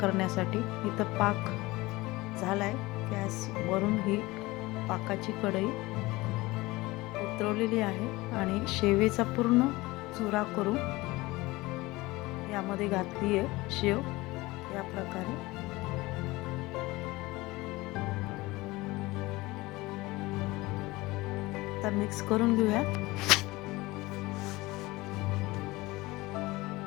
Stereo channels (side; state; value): right; quieter; 20.8 dB